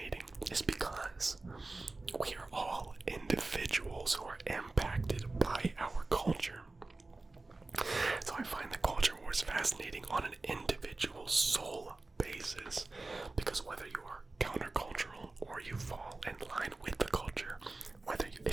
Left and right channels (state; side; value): quieter; left; 3.3 dB